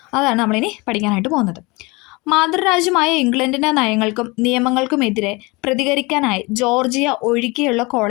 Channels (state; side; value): quieter; right; 25.5 dB